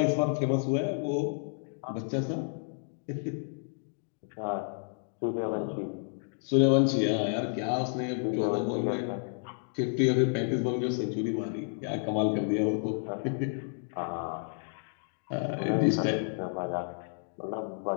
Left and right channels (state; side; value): silent; right; digital silence